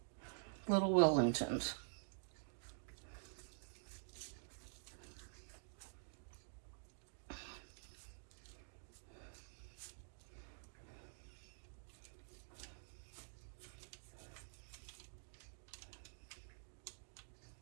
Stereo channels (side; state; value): left; silent; digital silence